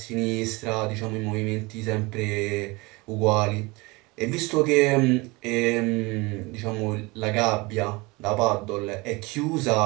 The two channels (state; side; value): quieter; left; 24.4 dB